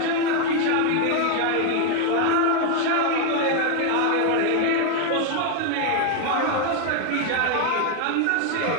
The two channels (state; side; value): different; both; correlation 0.01